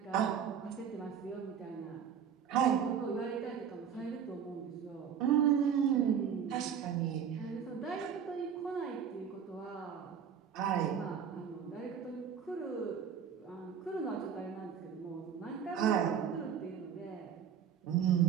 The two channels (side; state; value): left; quieter; 7.9 dB